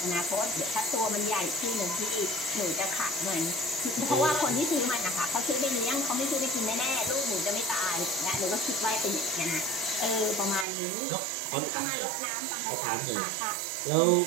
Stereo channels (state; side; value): drops out; left; at 10.7 s